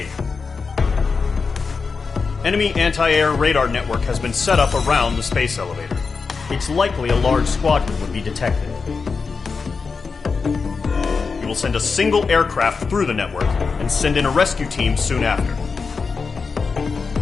Enemy anti-air radar network has been set up around the space elevator. It's likely a large squadron would be detected. We will send a single aircraft through the network and send in a rescue team soon after.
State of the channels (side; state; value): right; quieter; 4.9 dB